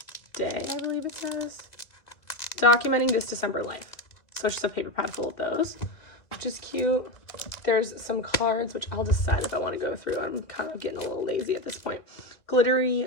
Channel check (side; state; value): right; late; 2.2 ms